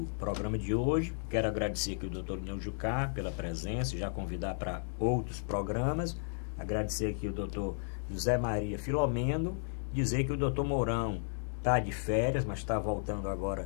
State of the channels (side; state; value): right; silent; digital silence